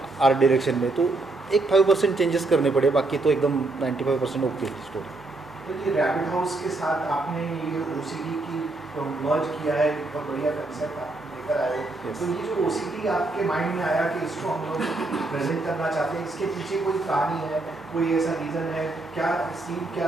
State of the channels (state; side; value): quieter; left; 3.1 dB